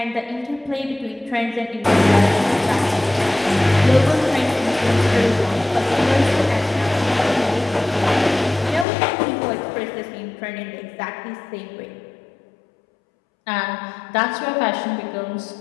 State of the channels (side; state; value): right; drops out; at 8.8 s